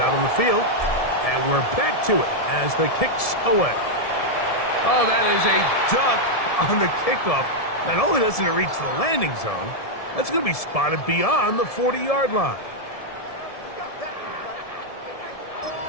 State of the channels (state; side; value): late; right; 1.7 ms